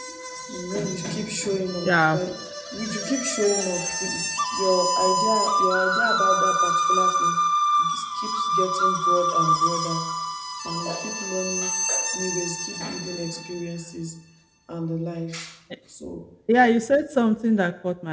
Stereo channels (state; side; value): identical; both; correlation 1.00